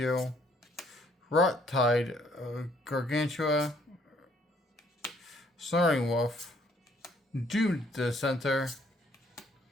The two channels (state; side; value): normal; both; correlation 0.64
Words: Rot Tide, Gargantua, Snoring Wolf, Doomed Dissenter,